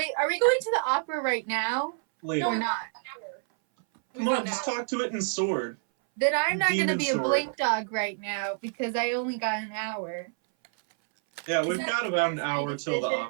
are we going to the opera right now? Later. Or not? Come on, just talk to it in sword. Then I'm not going to Demon be a sword. Blink Dog right now because I only got an hour. Yeah, we've that got about an my hour till the decision?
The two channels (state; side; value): silent; left; 59 dB below the other